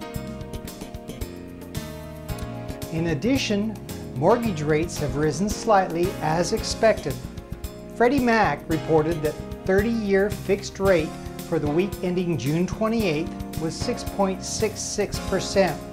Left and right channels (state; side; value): identical; both; correlation 1.00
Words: In addition, mortgage rates have risen slightly as expected. Freddie Mac reported that 30-year fixed rate for the week ending June 28th was 6.66%,